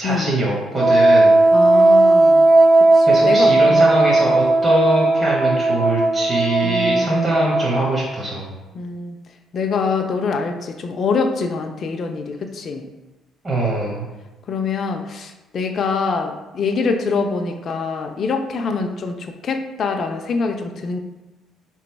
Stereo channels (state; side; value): normal; both; correlation 0.86